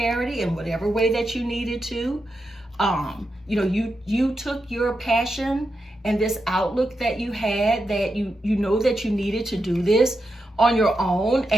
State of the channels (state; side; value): normal; both; correlation 0.87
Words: in whatever way that you needed to. You know, you took your passion and this outlook that you had, that you know that you needed to do this on your own,